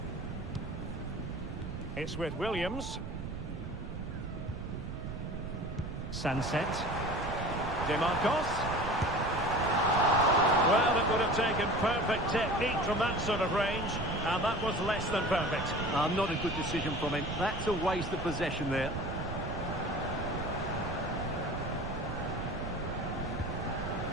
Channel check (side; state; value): right; noise; rumble, 7 dB below the sound